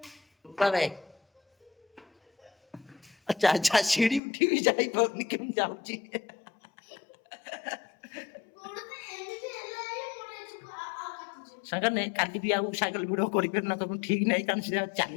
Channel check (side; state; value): right; drops out; at 4.2 s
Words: ବାଏ ବାଏ। ଆଚ୍ଛା ସିଡି ଉଠିବି ଯାଇପାରୁନି କେମିତି ଯାଉଛି। ସାଙ୍ଗରେ କାଲି ବି ଆଉ ସାଇକେଲ ଭିଡ଼ିଓ କରିପାରିନ ତମକୁ ଠିକ ନାହିଁ କାରଣ ସେ